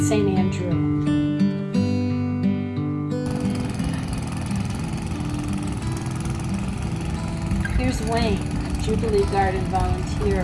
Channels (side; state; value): both; identical; correlation 1.00